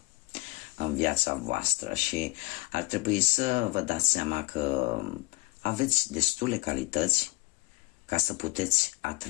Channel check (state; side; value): quieter; right; 24.6 dB